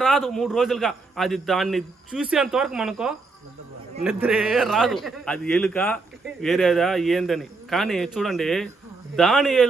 రాదు 3 రోజులుగా. అది దాన్ని చూసేంత వరకు మనకో నిద్రే రాదు. అది ఎలుక వేరేదా ఏందని. కానీ చూడండి,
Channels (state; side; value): quieter; left; 3.8 dB